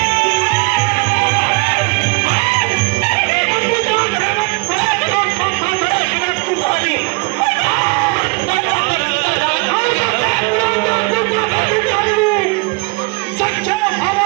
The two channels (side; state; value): left; quieter; 28.4 dB